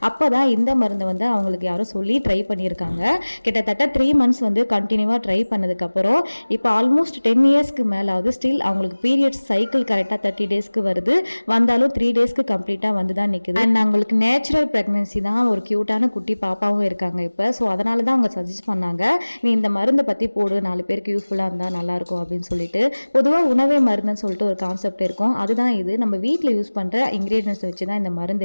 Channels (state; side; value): inverted; both; correlation -1.00